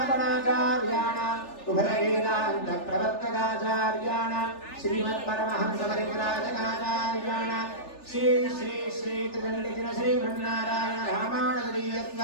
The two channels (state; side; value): late; right; 3.4 ms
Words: उभयवेदान्त प्रवर्तकाचार्याणां श्रीमत्परमहंस परिव्राजकाचार्याणां श्री श्री श्री त्रिदण्डिन श्रीमन्नारायण